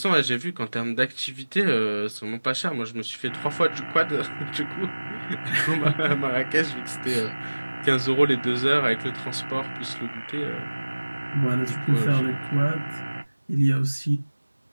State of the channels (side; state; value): both; inverted; correlation -1.00